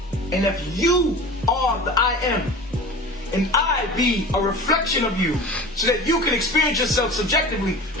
And if you are the I am, and I be a reflection of you, so that you can experience yourself subjectively,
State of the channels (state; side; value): normal; both; correlation 0.36